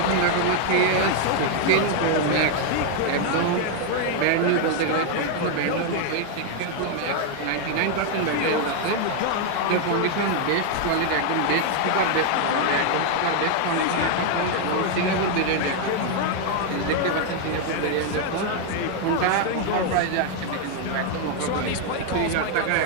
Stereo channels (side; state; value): both; different; correlation 0.01